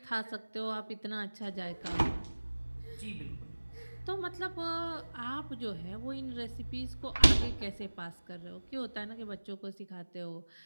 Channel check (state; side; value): inverted; both; correlation -1.00